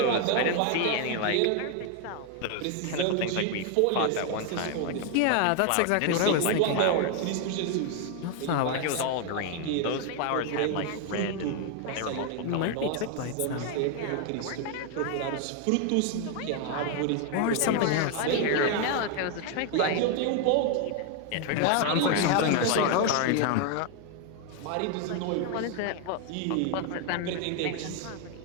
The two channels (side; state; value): both; different; correlation 0.01